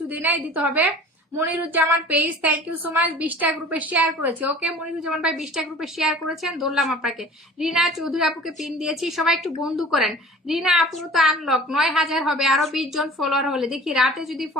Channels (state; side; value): normal; both; correlation 0.44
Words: দেই নাই, দিতে হবে। Moniruzzaman page, thank you so much, 20টা গ্রুপে শেয়ার করেছে। ওকে মনিরুজ্জামান ভাই 20টা গ্রুপে শেয়ার করেছেন, ধরলাম আপনাকে। রিনা চৌধুরী আপুকে পিন দিয়েছি, সবাই একটু বন্ধু করেন। রিনা আপু তো আনলক 9000 হবে, আরো 20 জন ফলোয়ার হলে দেখি, রাতে যদি